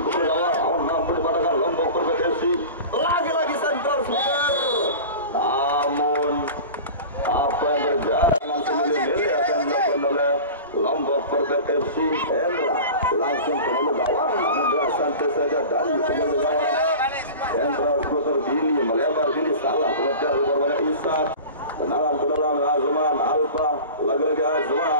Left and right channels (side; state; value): both; inverted; correlation -0.35